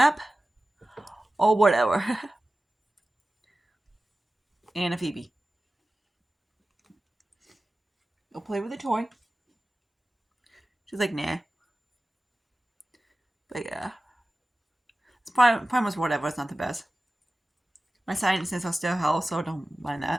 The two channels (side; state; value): both; normal; correlation 0.96